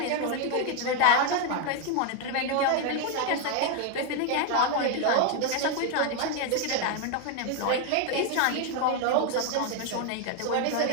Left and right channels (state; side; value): different; both; correlation 0.01